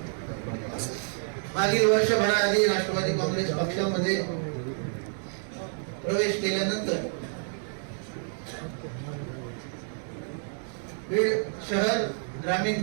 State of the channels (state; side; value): silent; left; 59 dB below the other